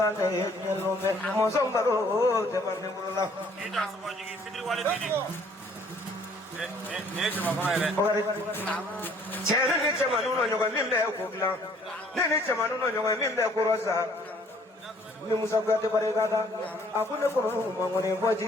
ne nyelo be. Mosong baro te mande mulola. Inda soma jigi sidri wale didi. Ne chema kona ile. Ogare. Chere ne chema nuno nyoga mimbe ko gla. Ne chema nuno nyoga mimbe ko rosa. ni musa kuyate barikada aku ne kono mangone bo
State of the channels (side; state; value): both; normal; correlation 0.60